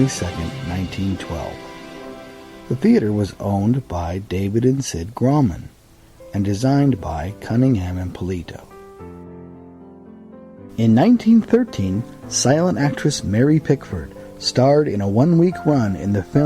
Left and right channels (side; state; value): both; identical; correlation 1.00